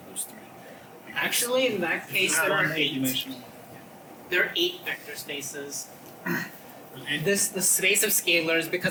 there's 3. Because Actually, in that case, there are 8. dimensional. There are 8 vector spaces. there's 8 The space of scalars,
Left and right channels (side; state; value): both; identical; correlation 1.00